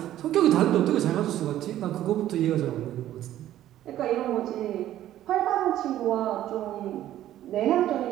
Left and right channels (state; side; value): quieter; left; 12.8 dB